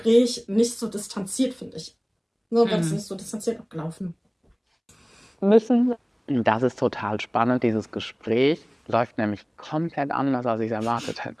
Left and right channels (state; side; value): identical; both; correlation 1.00